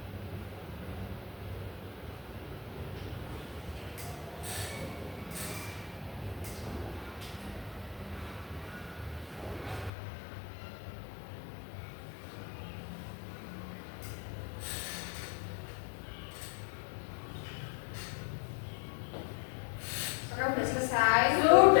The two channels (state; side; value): drops out; right; at 9.9 s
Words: Sekarang udah selesai?